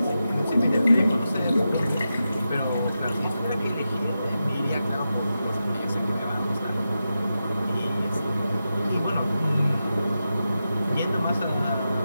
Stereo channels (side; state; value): both; inverted; correlation -0.90